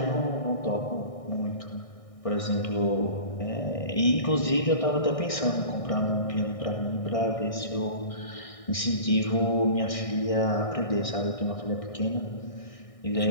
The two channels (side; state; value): right; late; 1.6 ms